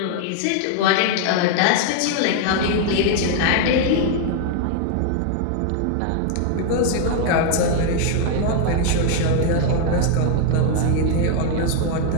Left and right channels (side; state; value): both; different; correlation 0.00